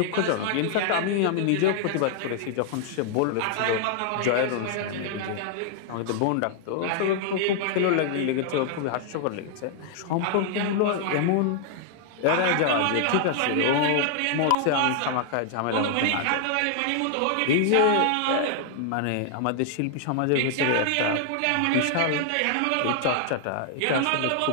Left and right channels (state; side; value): different; both; correlation 0.00